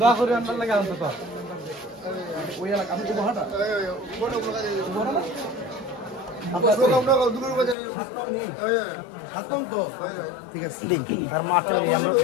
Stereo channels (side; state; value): right; drops out; at 7.8 s